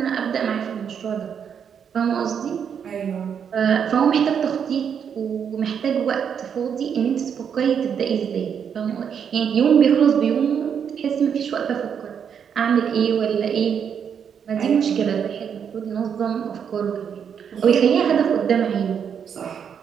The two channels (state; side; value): quieter; left; 7.6 dB